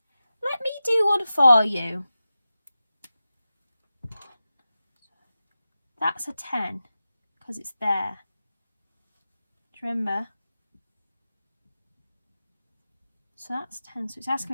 me do one for you. That's a 10 because it's there. Do you remember? So that's 10. So it's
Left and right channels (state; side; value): inverted; both; correlation -0.94